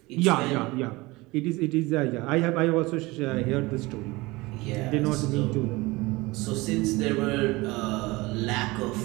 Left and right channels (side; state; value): left; quieter; 22.1 dB